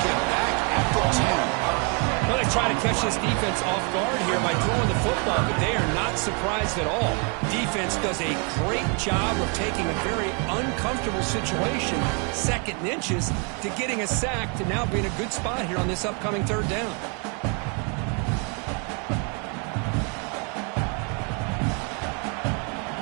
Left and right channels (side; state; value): left; quieter; 36.2 dB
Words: him back at the 10. Well, they try to catch this defense off guard here by throwing the football, but they are not surprised at all. Defense does a great job of taking a very uncomfortable situation, second and inches, to getting a sack to now being a good spot here on this upcoming third down.